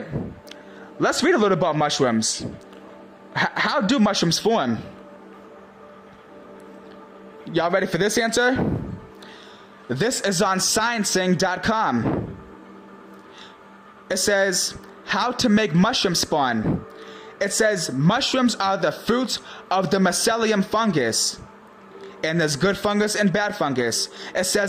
Let's read a little about mushrooms. How do mushrooms form? Y'all ready for this answer? This is on sciencing.com. It says, how to make mushroom spawn. It says mushrooms are the fruits of the mycelium fungus. And there's good fungus and bad fungus. It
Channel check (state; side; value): identical; both; correlation 1.00